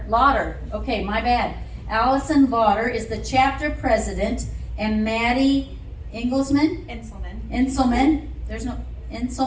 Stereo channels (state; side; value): identical; both; correlation 1.00